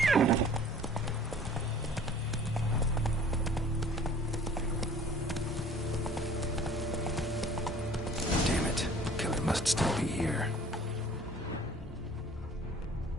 Damn it. Killer must still be here.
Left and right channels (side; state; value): both; normal; correlation 0.50